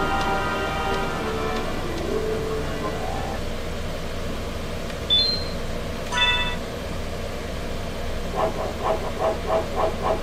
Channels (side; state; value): both; identical; correlation 1.00